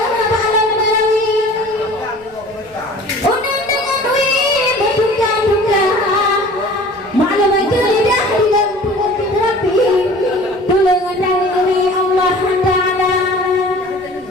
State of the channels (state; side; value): noise; left; rumble, 28 dB below the sound